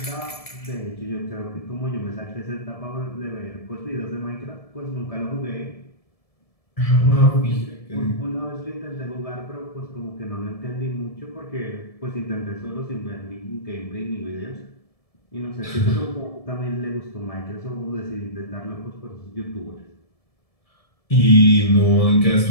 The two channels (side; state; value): right; late; 1.7 ms